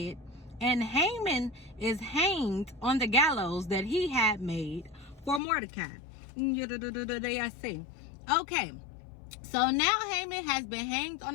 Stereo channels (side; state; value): right; drops out; at 5.4 s